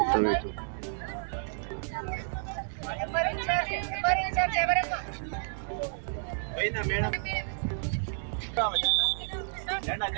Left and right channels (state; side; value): silent; left; digital silence